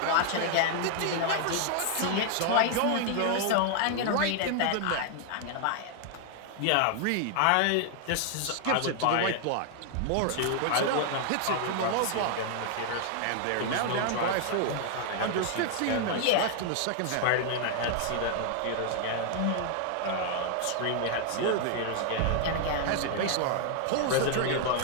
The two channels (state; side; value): different; both; correlation 0.00